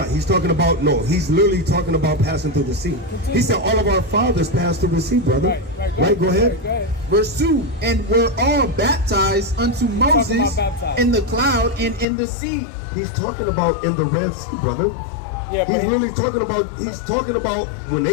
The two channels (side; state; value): right; drops out; at 12.1 s